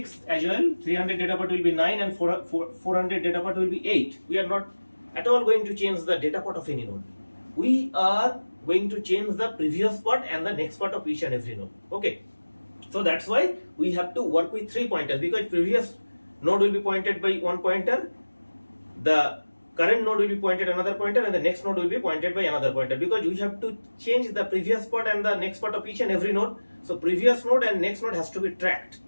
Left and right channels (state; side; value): inverted; both; correlation -1.00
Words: as well, 300 data part will be 9, and 400 data part will be 8. We are not at all going to change the data part of any node. We are going to change the previous part and the next part of each and every node. Okay, so that's why we have to work with three pointers, because previous node will be pointed by one pointer, the current node will be pointed another pointer, and the next node will be pointed by another pointer, because we have to change the previous part and the next part of each and every node. So previous node and next node has to be tracked